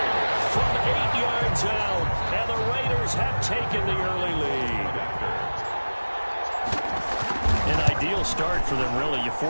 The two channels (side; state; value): both; inverted; correlation -1.00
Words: From 8 yards out, and the Raiders have taken the early lead. And I Ideal start for them, really. You